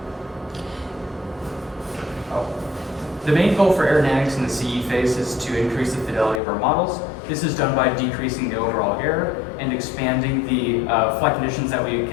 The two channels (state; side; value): drops out; right; at 6.4 s